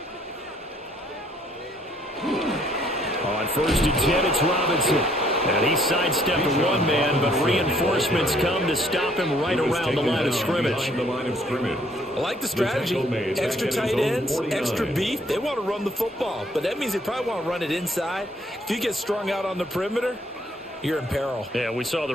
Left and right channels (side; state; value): both; normal; correlation 0.64